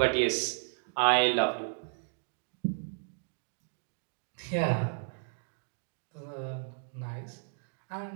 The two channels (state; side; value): silent; left; digital silence